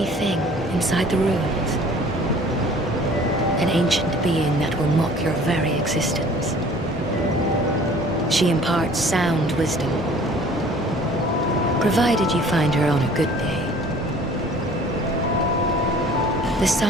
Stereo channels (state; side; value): normal; both; correlation 0.50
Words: thing inside the ruins, an ancient being that will mock your very existence. She imparts sound wisdom, provided you find her on a good day. The